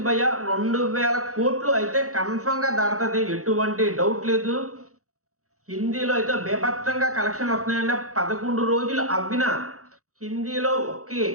భయ్య 2000 కోట్లు అయితే కన్ఫర్మ్ గా దాటుతుంది, ఎటువంటి డౌట్ లేదు. హిందీలో అయితే బేభత్సంగా కలెక్షన్ వస్తున్నాయండి. 11 రోజులు అవ్విన హిందీలో ఒకే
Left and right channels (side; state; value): left; late; 0.65 ms